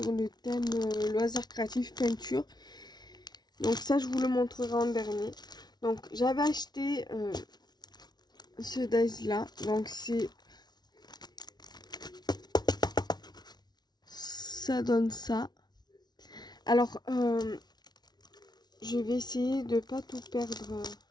le thème loisirs créatifs peinture. Donc ça, je vous le montrerai en dernier. Donc j'avais acheté ce dies là. Donc c'est... Ça donne ça. Alors, je vais essayer de pas tout perdre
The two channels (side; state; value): right; late; 0.20 ms